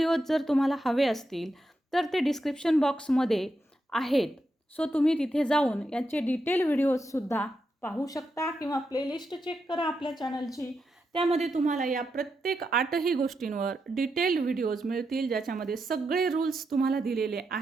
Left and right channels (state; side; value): normal; both; correlation 0.85